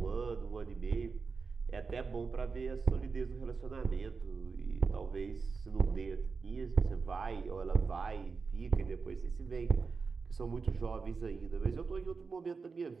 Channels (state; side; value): quieter; left; 4.8 dB